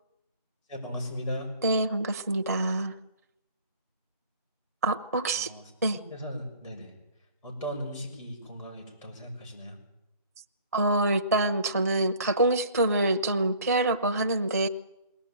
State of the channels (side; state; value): both; inverted; correlation -0.50